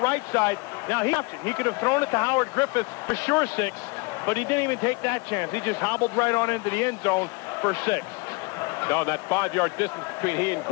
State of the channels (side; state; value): right; quieter; 28.1 dB